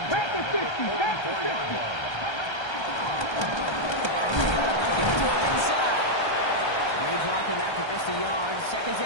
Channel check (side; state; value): right; late; 1.3 ms